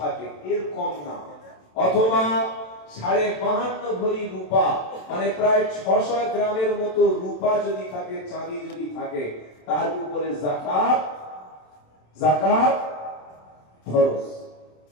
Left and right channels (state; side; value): late; right; 27 ms